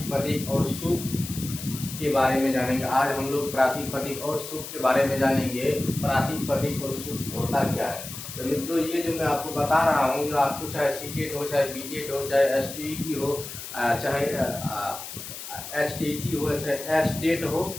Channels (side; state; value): left; noise; hiss, 10 dB below the sound